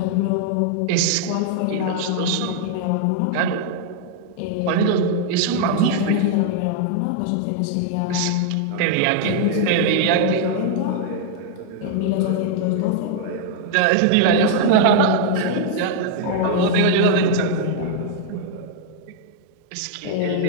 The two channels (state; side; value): different; both; correlation -0.01